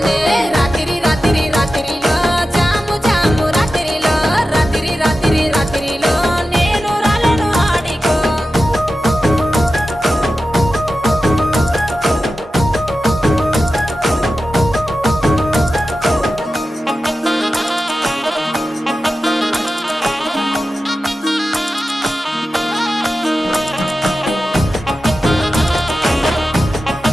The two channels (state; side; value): normal; both; correlation 0.93